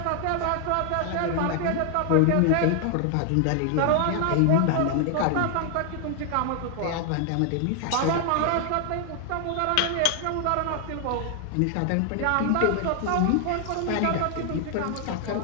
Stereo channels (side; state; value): both; different; correlation 0.00